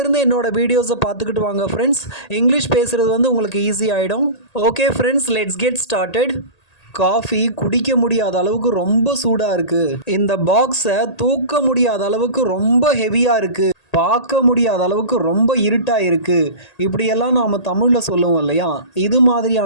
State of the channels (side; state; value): right; late; 1.8 ms